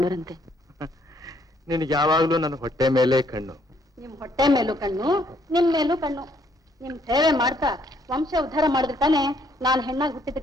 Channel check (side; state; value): both; normal; correlation 0.67